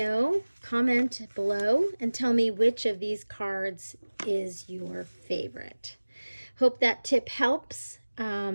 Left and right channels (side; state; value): both; inverted; correlation -1.00